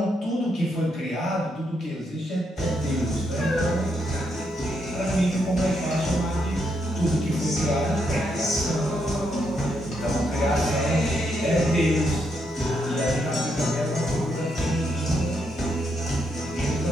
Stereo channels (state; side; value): normal; both; correlation 0.78